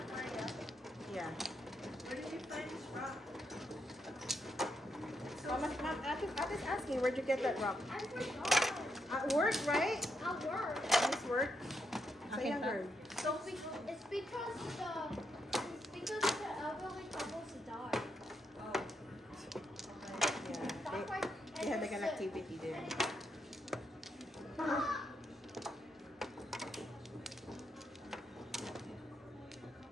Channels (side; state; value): both; normal; correlation 0.80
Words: Yeah. Where did you find this rock? Ate is asking, where'd you get that rock? I forgot. At work, right? At work. This work? Sa Akin younger. So it's because the elderly couples died. Yeah. That's why. They had like an activity there.